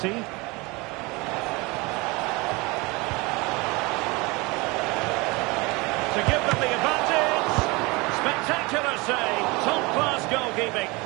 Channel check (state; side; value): quieter; left; 25.2 dB